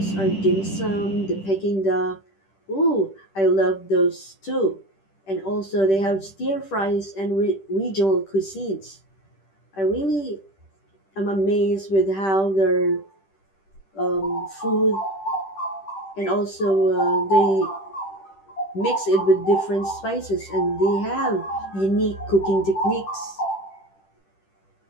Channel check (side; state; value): right; late; 10 ms